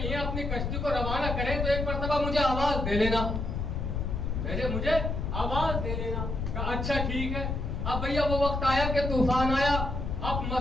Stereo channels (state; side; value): noise; left; rumble, 2 dB below the sound